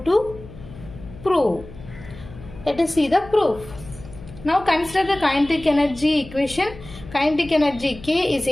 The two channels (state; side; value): noise; left; hum, 17 dB below the sound